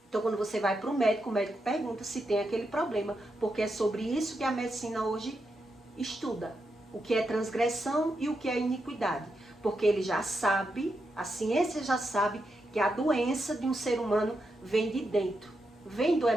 Então, quando você vai para o médico pergunta se tem aquele problema, porque é sobre isso que a medicina hoje estuda. O que é transgressão e o que é iniquidade. Porque ele já sabe, a ciência já sabe, que a doença de um ser humano vem de dentro, vem do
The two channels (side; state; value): both; normal; correlation 0.85